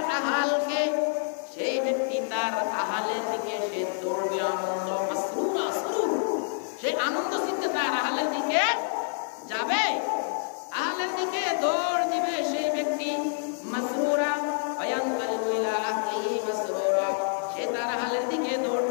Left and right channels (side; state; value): right; silent; 60 dB below the other